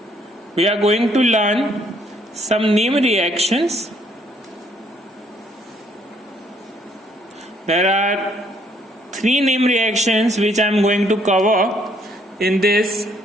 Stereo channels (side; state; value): both; normal; correlation 0.67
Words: we are going to learn some name reactions. There are 3 name reactions which I am going to cover in this